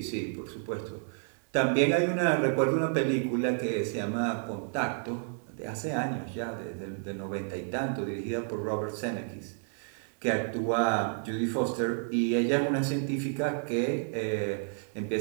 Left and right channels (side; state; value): left; silent; 57 dB below the other